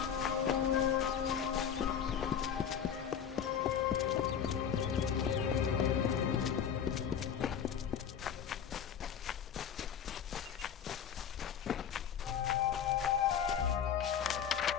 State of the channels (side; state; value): right; quieter; 8.2 dB